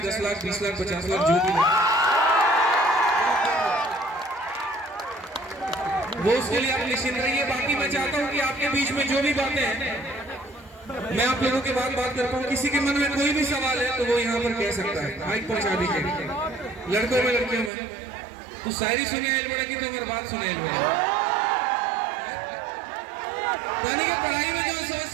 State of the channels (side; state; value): left; drops out; at 17.7 s